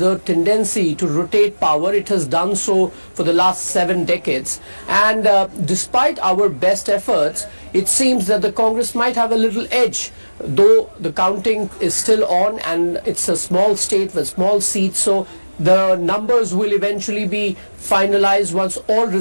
tendency to rotate power. It has done so for the last 7 decades. And despite our best efforts, it seems that the Congress might have a little edge, though the counting is still on and it's a small state with small seats. So the numbers will eventually be finalized once all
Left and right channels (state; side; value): inverted; both; correlation -1.00